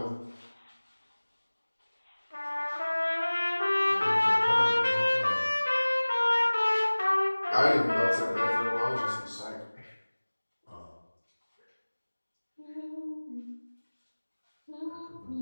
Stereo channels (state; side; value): inverted; both; correlation -1.00